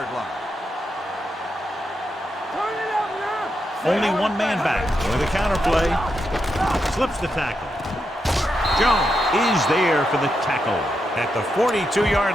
line. Only one man back. With a counter play. Slips the tackle. Jones is there for the tackle at the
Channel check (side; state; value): both; normal; correlation 0.84